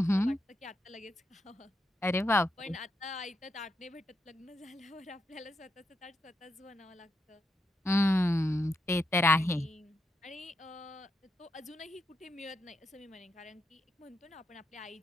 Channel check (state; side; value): normal; both; correlation 0.82